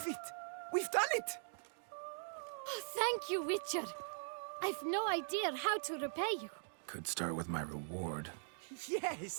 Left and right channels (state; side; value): silent; left; digital silence